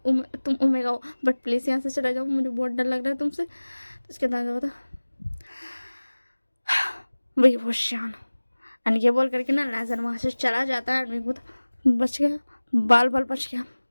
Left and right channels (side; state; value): both; inverted; correlation -1.00